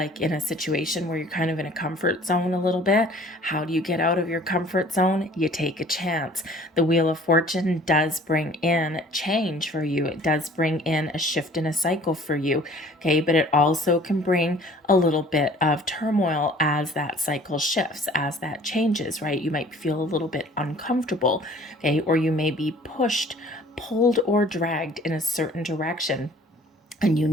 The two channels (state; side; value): normal; both; correlation 0.51